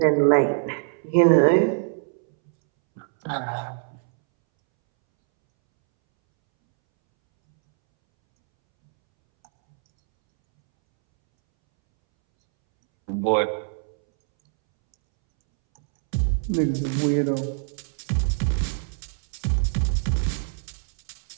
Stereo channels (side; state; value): left; silent; 63 dB below the other